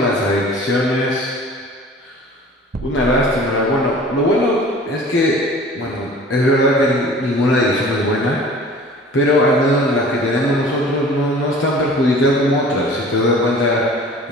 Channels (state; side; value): normal; both; correlation 0.45